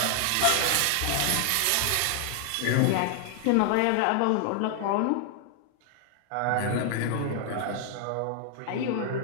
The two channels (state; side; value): different; both; correlation 0.00